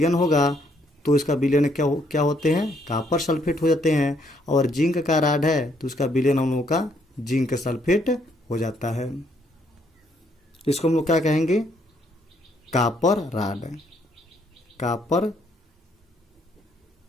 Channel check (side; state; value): both; normal; correlation 0.70